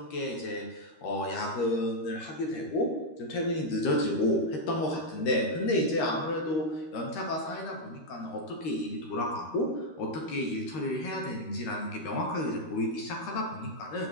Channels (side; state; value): right; late; 13 ms